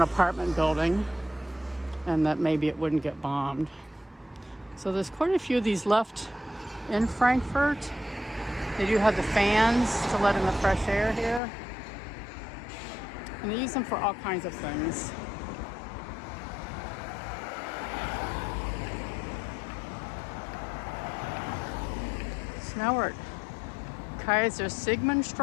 apartment building and that maybe it wouldn't get bombed. So there's quite a few of these left in Frankfurt. They do have the fans to let in the fresh air here. And they use them for all kinds of things. So now we're at Kaiser Sigmund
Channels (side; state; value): right; drops out; at 11.4 s